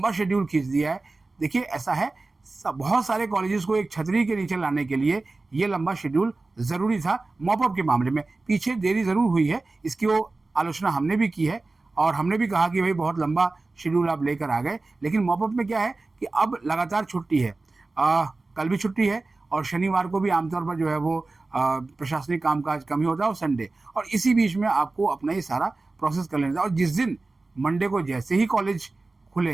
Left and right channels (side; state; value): left; quieter; 3.4 dB